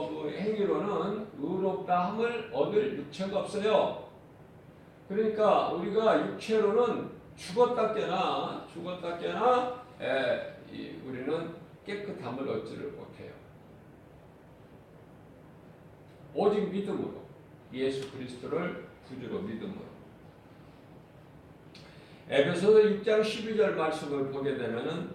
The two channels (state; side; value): identical; both; correlation 1.00